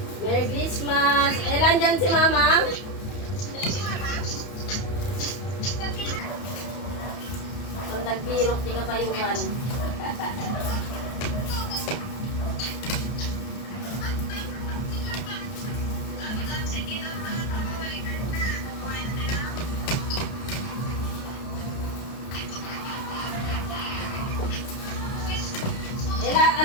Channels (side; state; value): right; late; 32 ms